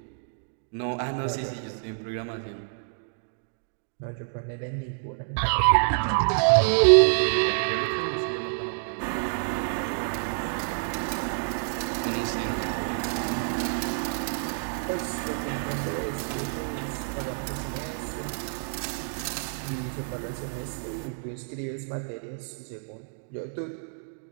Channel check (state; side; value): silent; left; digital silence